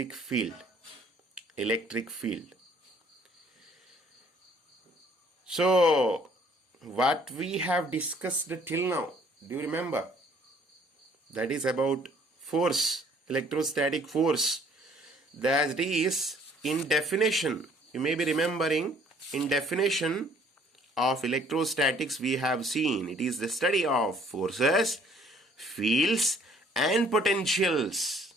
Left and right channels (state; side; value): normal; both; correlation 0.59